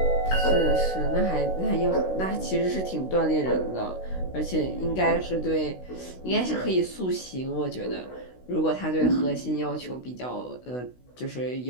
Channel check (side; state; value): right; late; 16 ms